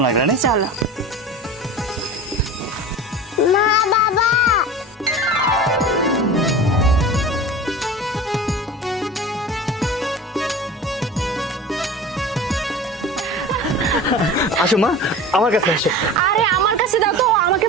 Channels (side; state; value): both; normal; correlation 0.34